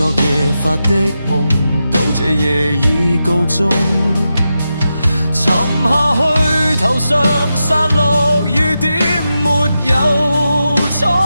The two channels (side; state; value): both; inverted; correlation -0.89